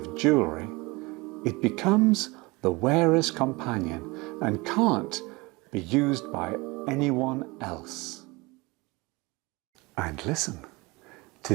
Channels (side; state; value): left; quieter; 24.3 dB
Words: jewellery. It becomes the wearer's companion and can't be used by anyone else. And listen to